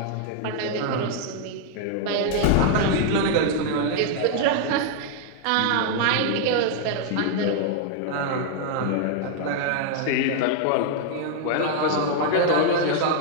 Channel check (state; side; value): different; both; correlation 0.00